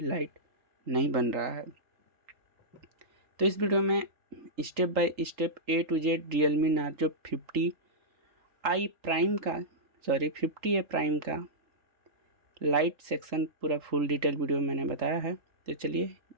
नहीं बन रहा है। तो इस वीडियो में step by step A to Z Realme Narzo 50i prime का 50A प्राइम का लाइट सेक्शन पूरा फुल डिटेल वीडियो मैंने बताया है। तो चलिए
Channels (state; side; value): late; left; 3.8 ms